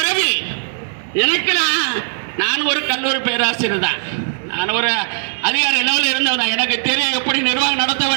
எனக்கு நான் ஒரு கல்லூரி பேராசிரியர் தான். நான் ஒரு அதிகாரி லெவலில் இருந்தவன், எனக்கு தெரியும் எப்படி நிர்வாகம் நடத்த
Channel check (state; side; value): silent; left; 67 dB below the other